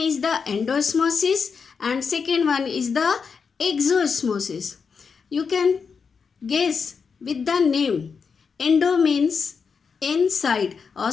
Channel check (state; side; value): quieter; right; 5.7 dB